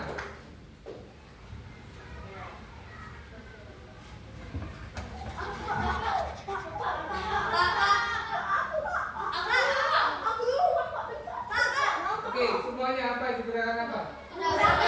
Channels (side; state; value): both; identical; correlation 1.00